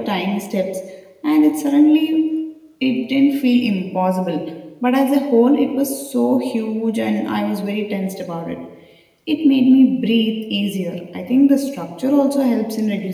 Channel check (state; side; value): identical; both; correlation 1.00